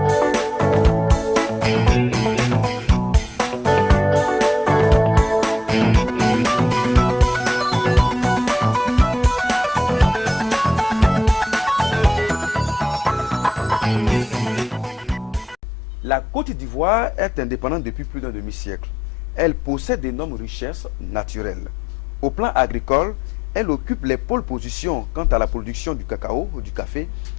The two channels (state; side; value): drops out; right; at 15.6 s